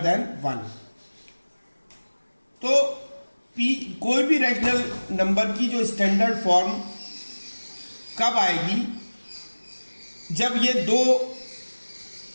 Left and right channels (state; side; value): inverted; both; correlation -1.00